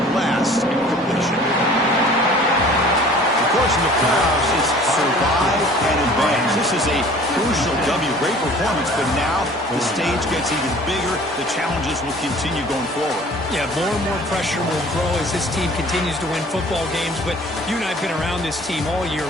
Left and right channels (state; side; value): normal; both; correlation 0.49